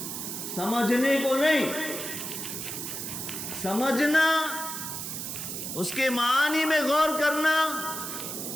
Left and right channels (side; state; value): right; noise; hiss, 6 dB below the sound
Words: سمجھنے کو نہیں۔ سمجھنا، اس کے معانی میں غور کرنا،